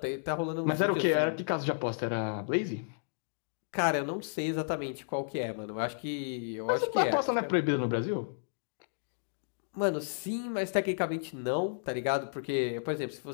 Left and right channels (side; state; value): right; silent; digital silence